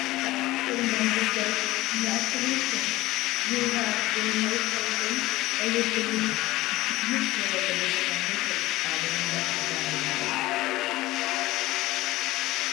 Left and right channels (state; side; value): quieter; right; 18.0 dB